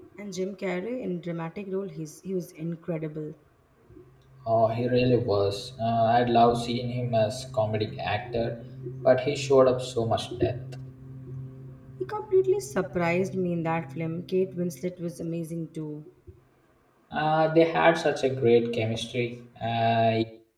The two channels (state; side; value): identical; both; correlation 1.00